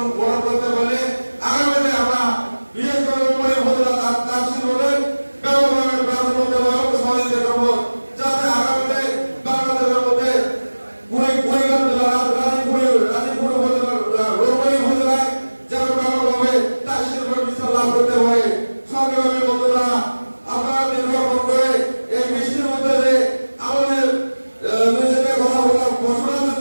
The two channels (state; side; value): inverted; both; correlation -1.00